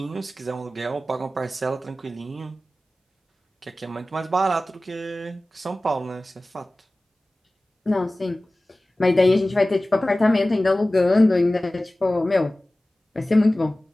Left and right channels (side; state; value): both; normal; correlation 0.97